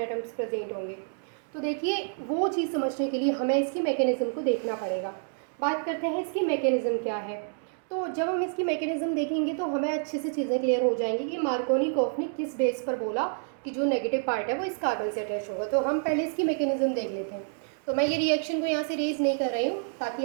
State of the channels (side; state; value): left; silent; 59 dB below the other